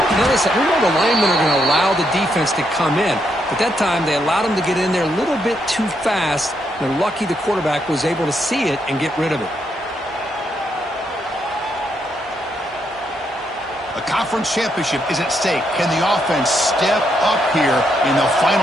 Now listen, we know the linemen are going to allow the defense to come in. But that time, they allowed him to get in there a little bit too fast. They're lucky the quarterback was able to see it and get rid of it. A conference championship is at stake. Can the offense step up here in the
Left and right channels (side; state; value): both; normal; correlation 0.78